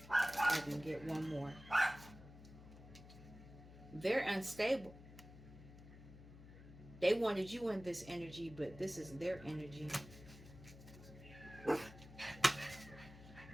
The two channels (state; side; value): noise; left; hum, 17 dB below the sound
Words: I can get one more. They're unstable. They wanted you in this energy, but this is their energy.